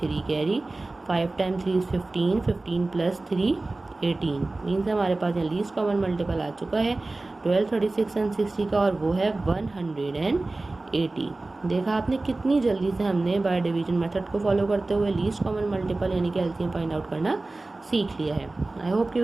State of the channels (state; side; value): quieter; left; 3.1 dB